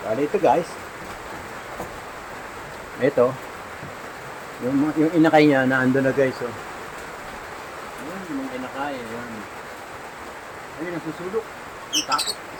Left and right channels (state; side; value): identical; both; correlation 1.00